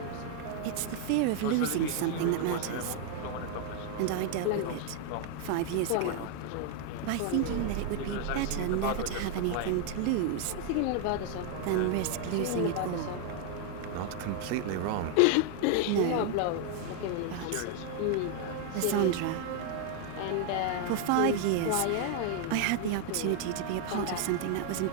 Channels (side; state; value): both; different; correlation 0.00